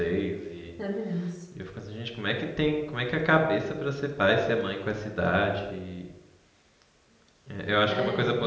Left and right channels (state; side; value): identical; both; correlation 1.00